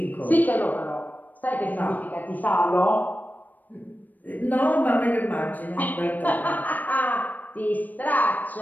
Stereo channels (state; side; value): late; right; 0.085 ms